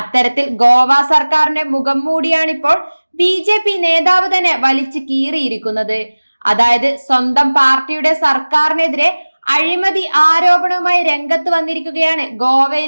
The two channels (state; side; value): inverted; both; correlation -1.00